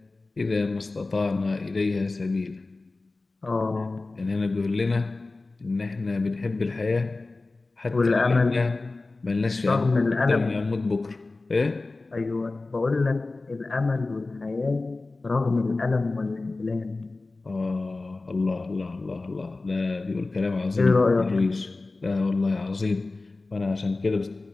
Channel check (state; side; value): quieter; right; 3.4 dB